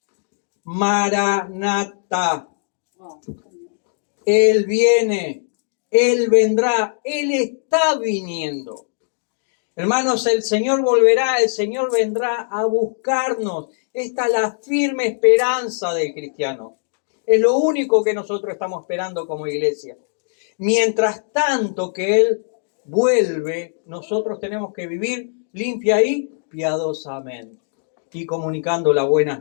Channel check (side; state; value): right; silent; digital silence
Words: Maranatha. Él viene, Él vendrá, Él está viniendo. Hermanos, el Señor volverá, el Señor vendrá a buscarnos. Esta es la firme esperanza del cristiano. Es lo único que nosotros estamos esperando como iglesia. Mientras tanto que Él vuelve, nosotros tenemos que vivir limpia y piadosamente y comunicando las buenas